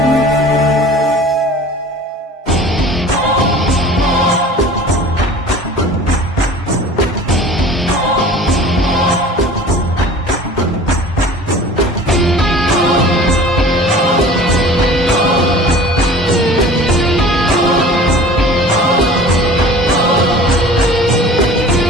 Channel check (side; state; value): both; normal; correlation 0.43